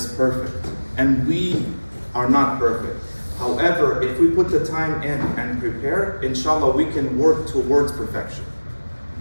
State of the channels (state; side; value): inverted; both; correlation -1.00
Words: perfect. And we are not perfect. However, if we put the time in and prepare, inshallah, we can work towards perfection.